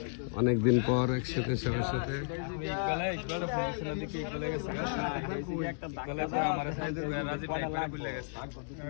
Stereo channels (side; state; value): right; silent; digital silence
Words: অনেকদিন পর একসাথে সবার সাথে